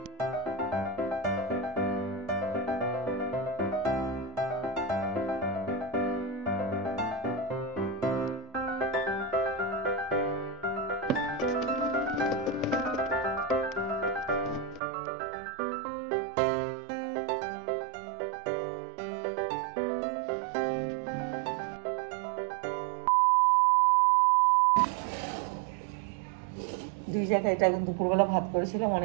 দুই জায়গায় এটা দুপুরবেলা ভাত করেছিলাম,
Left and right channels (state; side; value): drops out; left; at 14.8 s